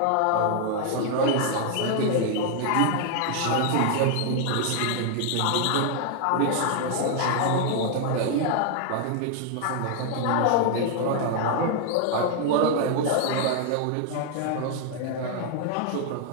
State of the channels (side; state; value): both; different; correlation 0.00